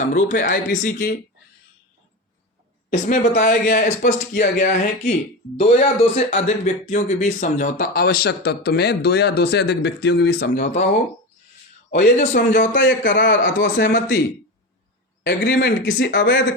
है IPC की। इसमें बताया गया है, स्पष्ट किया गया है कि दो या दो से अधिक व्यक्तियों के बीच समझौता, आवश्यक तत्व में दो या दो से अधिक व्यक्तियों के बीच समझौता हो, और ये जो समझौता या करार अथवा सहमति एग्रीमेंट किसी अवैध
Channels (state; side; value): normal; both; correlation 0.22